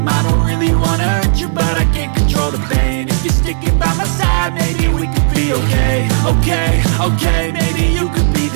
I don't really wanna hurt you but I can't control the pain. If you're sticking by my side maybe we could be okay. Okay, maybe you could be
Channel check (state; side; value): silent; left; digital silence